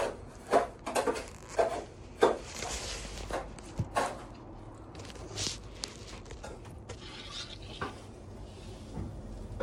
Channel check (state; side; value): identical; both; correlation 1.00